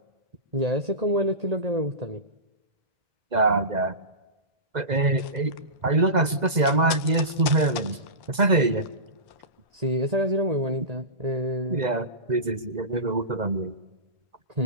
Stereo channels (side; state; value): left; late; 2.0 ms